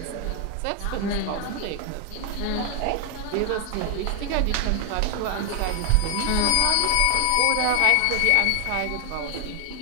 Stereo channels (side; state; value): both; different; correlation 0.00